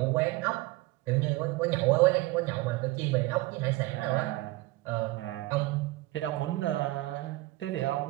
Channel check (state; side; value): quieter; left; 19.8 dB